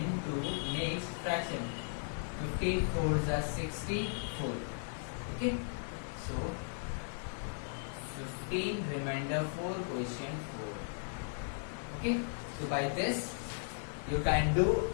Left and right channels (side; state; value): right; silent; digital silence